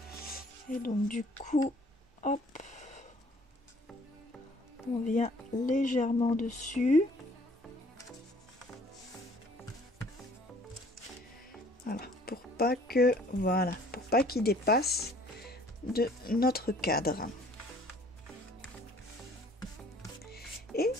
Et donc du coup, hop, on vient légèrement dessus. Voilà, pour pas qu'il dépasse de notre cadre. Et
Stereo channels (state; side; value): normal; both; correlation 0.56